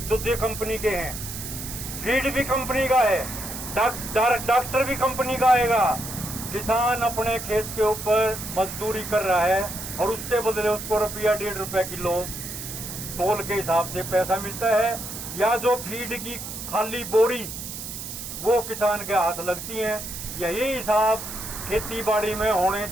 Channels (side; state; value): right; noise; hiss, 8 dB below the sound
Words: दूसरी कंपनी के हैं, फीड भी कंपनी का है, डॉक्टर भी कंपनी का आएगा। किसान अपने खेत के ऊपर मजदूरी कर रहा है और उसके बदले उसको रुपया 1.5 रुपया किलो तोल के हिसाब से पैसा मिलता है, या जो फीड की खाली बोरी वो किसान के हाथ लगती है। यही हिसाब खेती बाड़ी में होने